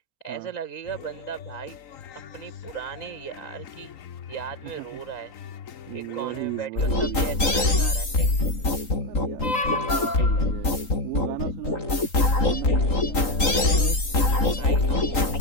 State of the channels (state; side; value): late; right; 3.9 ms